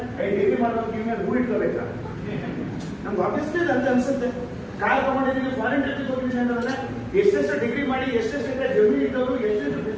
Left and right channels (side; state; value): both; identical; correlation 1.00